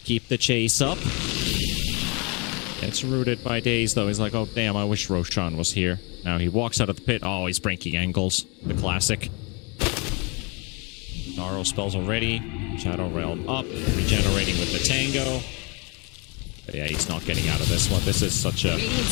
the chase up. Gets rooted by Daze though. He's like, oh damn, I wish Roshan was here. Now he walks out of the pit. Oh, he's breaking ankles. The classic. Kitaro spells already. Shadow Realm up, regenerating with the Tango. But yeah, he's not getting out of this one. This is such a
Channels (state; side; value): quieter; right; 30.9 dB